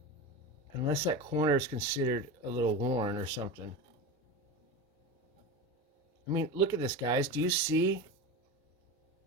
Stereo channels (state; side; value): normal; both; correlation 0.24